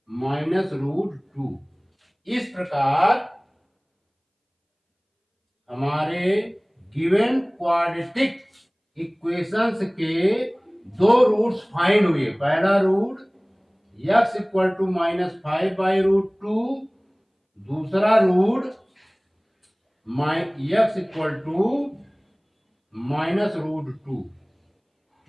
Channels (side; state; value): both; identical; correlation 1.00